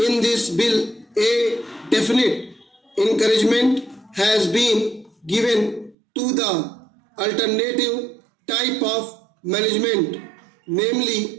this bill, a definite encouragement has been given to the alternative type of management,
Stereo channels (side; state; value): left; drops out; at 6.0 s